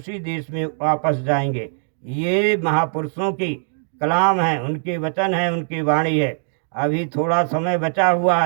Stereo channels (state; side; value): silent; left; digital silence